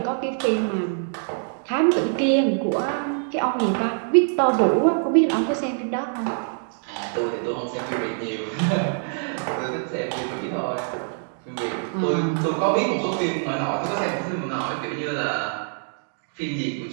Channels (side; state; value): left; silent; digital silence